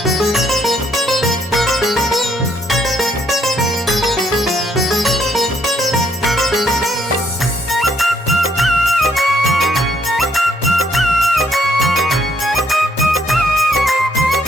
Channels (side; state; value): both; normal; correlation 0.70